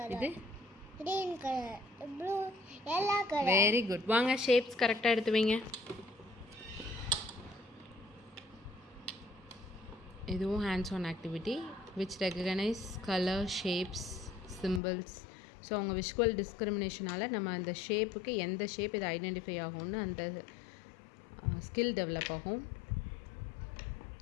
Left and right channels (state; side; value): drops out; right; at 14.8 s